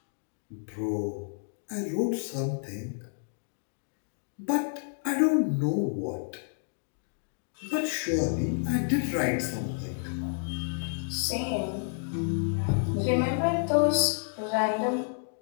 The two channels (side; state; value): right; silent; digital silence